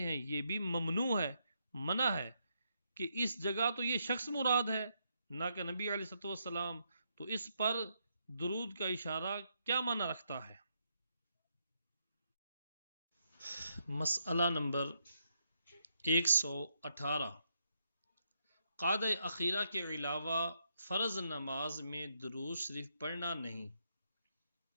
یہ بھی ممنوع ہے، منع ہے کہ اس جگہ تو یہ شخص مراد ہے نہ کہ نبی علیہ الصلوۃ والسلام، تو اس پر درود کا اشارہ کیا معنی رکھتا ہے؟ مسئلہ نمبر 118، قعدہ اخیرہ کے علاوہ فرض نماز میں درود شریف پڑھنا نہیں،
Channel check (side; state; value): both; inverted; correlation -0.78